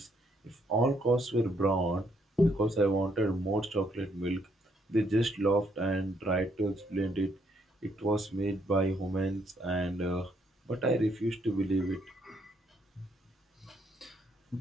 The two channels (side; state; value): both; normal; correlation 0.72